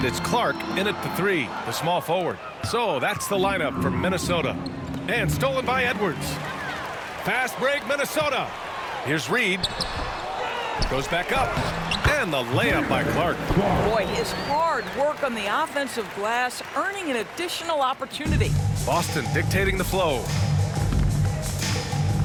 it's Clark in at the 3, the small forward. So that's the lineup for Minnesota. And stolen by Edwards. Fast break, Minnesota. Here's Reid. Goes back up. And the layup by Clark. Boy, his hard work on the offensive glass, earning an additional opportunity. Boston dictating the flow.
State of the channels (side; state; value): both; identical; correlation 1.00